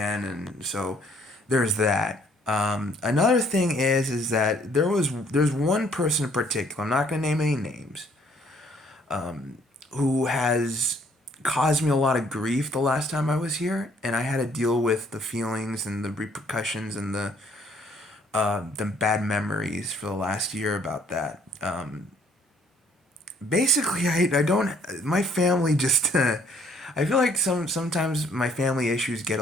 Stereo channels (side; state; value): both; normal; correlation 0.62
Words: and so there's that. Another thing is that there's one person in particular. I'm not gonna name any names. Who has caused me a lot of grief the last time I was here, and I had to deal with the feelings and the repercussions and the bad memories for the last year about that. Basically, I don't my family just I feel like sometimes my family issues get